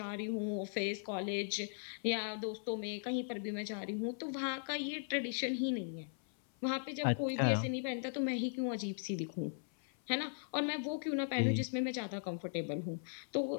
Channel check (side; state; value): right; silent; 52 dB below the other